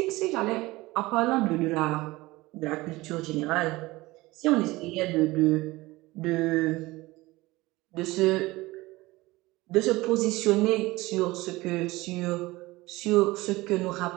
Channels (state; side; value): quieter; left; 20.2 dB